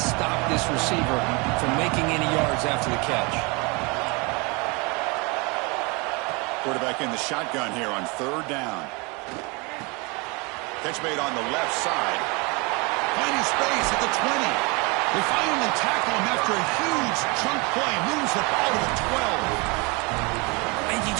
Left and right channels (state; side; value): quieter; left; 28.7 dB